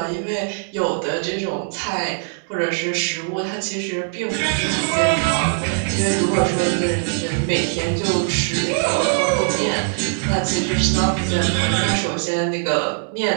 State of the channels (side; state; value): left; silent; digital silence